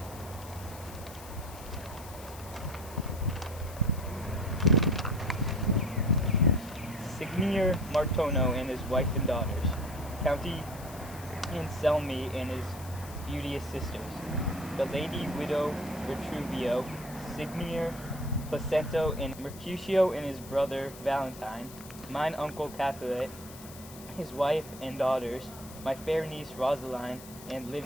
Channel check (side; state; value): left; noise; hiss, 17 dB below the sound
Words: Signor Martono and his wife and daughters, County Anselmi and his beauteous sisters, the lady widow Retruvio, Signor Placento and Mercutio and his brother Valentine, mine uncle Capulet, his wife and daughters, my fair niece Rosaline and